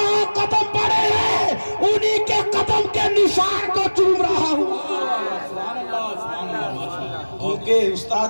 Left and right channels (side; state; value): both; inverted; correlation -1.00